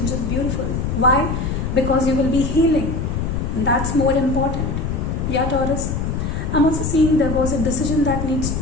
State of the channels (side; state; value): left; noise; rumble, 2 dB below the sound